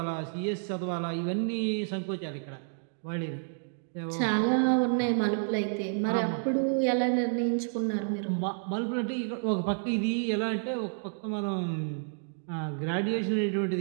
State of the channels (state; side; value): silent; left; digital silence